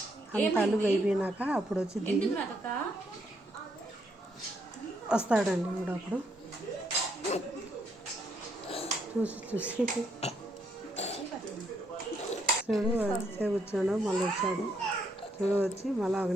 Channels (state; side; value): normal; both; correlation 0.74